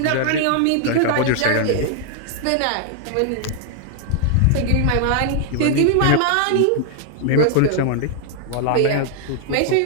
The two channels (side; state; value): both; different; correlation 0.00